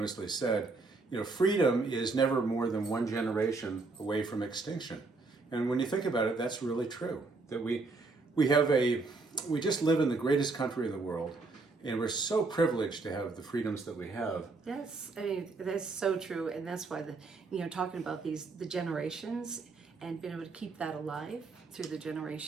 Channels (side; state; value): left; quieter; 3.7 dB